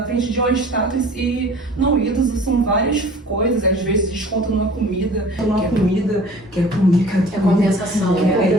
frente de uma estátua e não, ídolos são várias coisas, às vezes desconto numa comida, que é compensação. É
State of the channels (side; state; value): both; normal; correlation 0.46